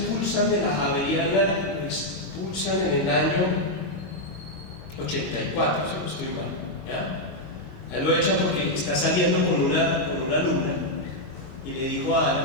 de la Javeriana, lo expulsan en el año 84, si no estoy mal, ¿ya? A él lo echan porque está saliendo con una alumna y le dijo a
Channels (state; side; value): late; right; 22 ms